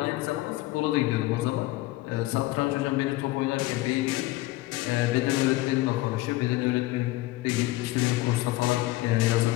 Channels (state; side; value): quieter; right; 18.2 dB